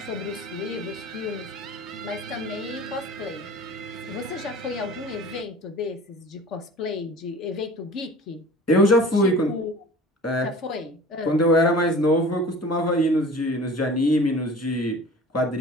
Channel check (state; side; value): normal; both; correlation 0.42